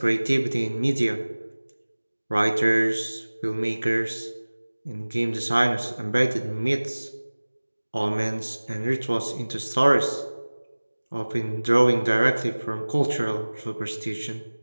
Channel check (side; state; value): both; inverted; correlation -1.00